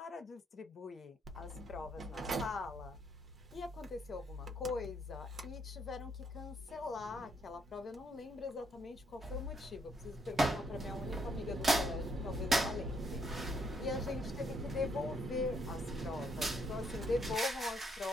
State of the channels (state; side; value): normal; both; correlation 0.73